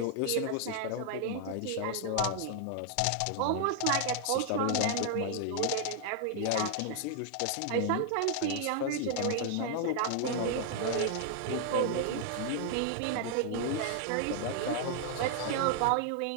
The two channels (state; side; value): different; both; correlation 0.00